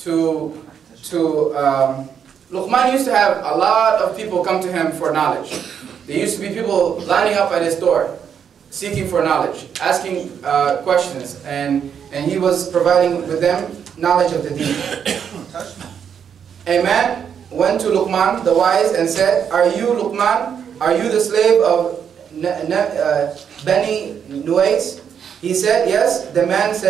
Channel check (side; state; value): left; quieter; 7.8 dB